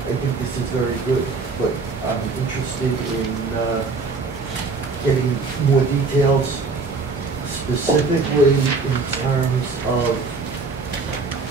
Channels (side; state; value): left; quieter; 4.1 dB